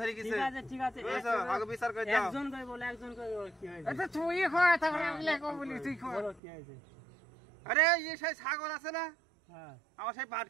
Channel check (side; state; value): left; drops out; at 6.4 s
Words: গেছে। ঠিক আছে আগে বিচার করে দাও। একজন করে বলে একজন করে কি হয়েছে? আচ্ছা তুই কয় তারপরে আমি লেখো বলি, তুই কয় বলো কি হয়েছে? আরে এই সেই ছাগল আছে না, হ্যাঁ আমার সেই পাট